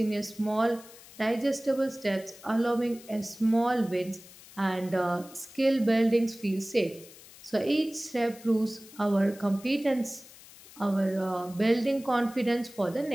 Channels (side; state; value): left; noise; hiss, 20 dB below the sound